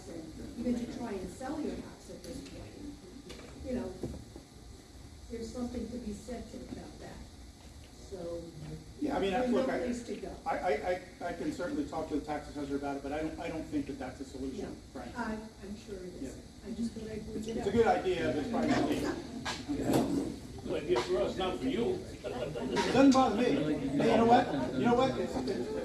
and even to try and sell your house at this point, there's something to be said about that, so. Yeah, I mean, there's look, no place to go. I can certainly talk to the tax assessor about it, but I don't think that that's a solution, Frank. I'm sure it is, I just thought I'd bring it up. It's a good idea, but it's probably not legal. Good idea for us, not for you. It doesn't bother me. Hey, you know what? It's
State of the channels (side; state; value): both; identical; correlation 1.00